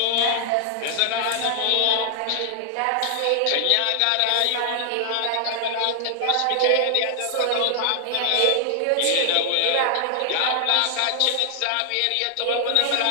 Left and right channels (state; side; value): different; both; correlation 0.00